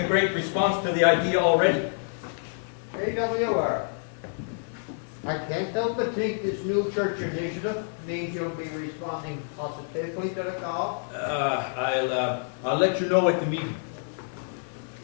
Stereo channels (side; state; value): right; silent; 55 dB below the other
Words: great response to the idea already. AWR. I can't help but think this new church initiative means you'll be responding positively to the call. I'll let you know at the meeting.